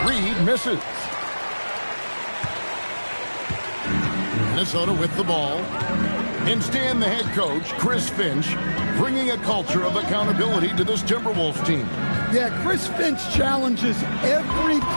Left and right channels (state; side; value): inverted; both; correlation -1.00